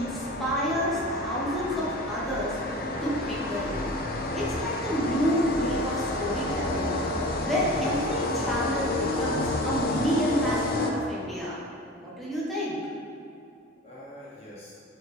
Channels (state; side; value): normal; both; correlation 0.35